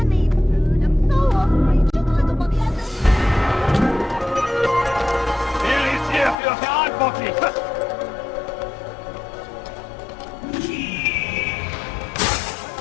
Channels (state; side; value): drops out; right; at 6.4 s